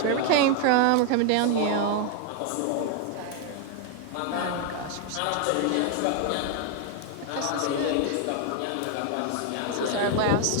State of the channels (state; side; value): different; both; correlation 0.00